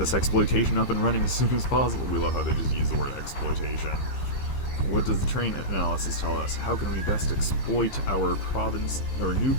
exploitation up and running as soon as possible. We love how they just use the word exploitation. What does the terrain analysis tell us? How can we best exploit our province, or new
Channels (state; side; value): late; right; 15 ms